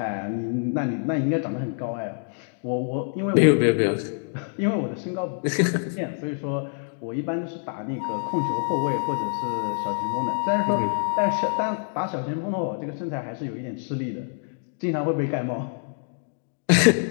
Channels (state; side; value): silent; right; digital silence